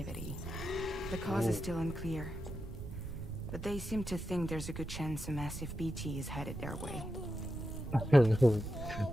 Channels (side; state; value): right; noise; rumble, 9 dB below the sound